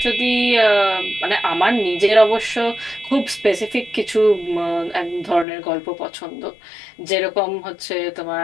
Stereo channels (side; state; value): right; drops out; at 5.5 s